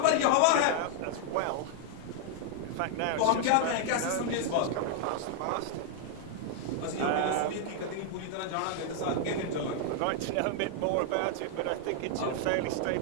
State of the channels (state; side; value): different; both; correlation 0.00